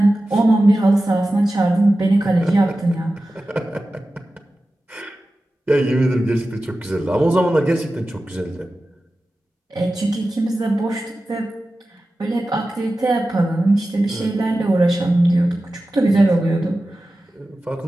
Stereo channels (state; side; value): normal; both; correlation 0.94